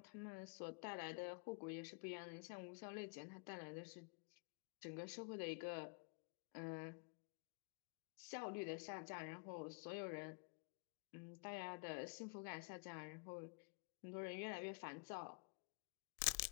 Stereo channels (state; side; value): quieter; right; 35.3 dB